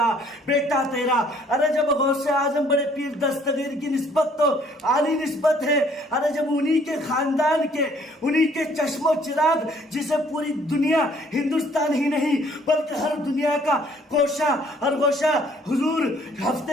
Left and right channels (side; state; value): both; normal; correlation 0.61